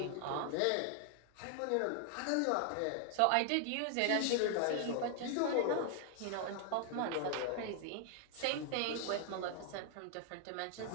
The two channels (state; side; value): different; both; correlation 0.00